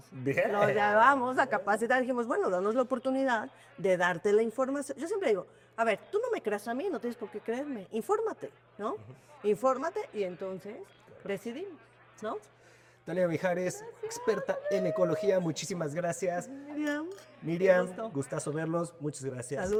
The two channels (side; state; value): both; identical; correlation 1.00